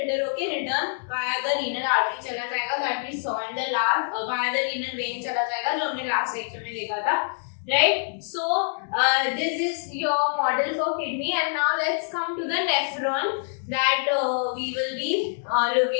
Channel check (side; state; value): right; silent; digital silence